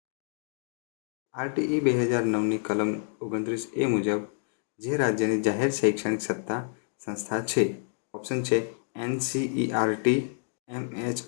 RTE 2009ની કલમ 29A મુજબ જે રાજ્યની જાહેર શૈક્ષણિક સત્તા સંસ્થા છે. ઓપ્શન છે NCERT,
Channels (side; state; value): right; silent; digital silence